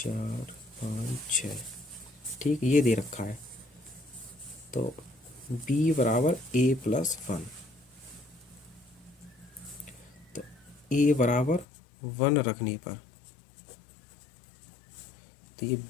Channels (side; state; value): right; drops out; at 11.7 s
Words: 5 6, ठीक, ये दे रखा है। तो b बराबर a प्लस 1, तो a बराबर 1 रखने पर, तो ये